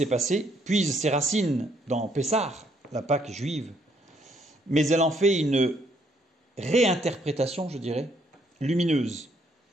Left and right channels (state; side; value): normal; both; correlation 0.69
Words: passé puise ses racines dans Pessah, la Pâque juive, mais elle en fait une réinterprétation, je dirais, lumineuse.